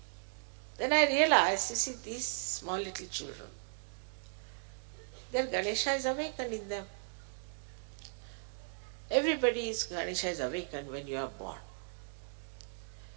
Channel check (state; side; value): silent; left; digital silence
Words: Then I realized, you see, these small little children, their Ganesha is awakened in them. Everybody's Ganesha is awakened when you are born.